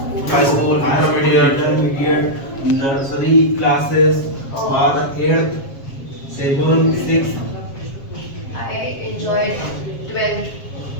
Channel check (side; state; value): right; late; 7.4 ms